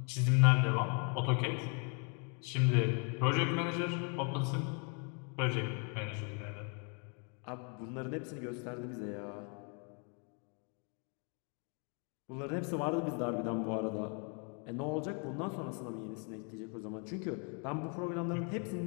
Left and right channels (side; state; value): right; quieter; 38.0 dB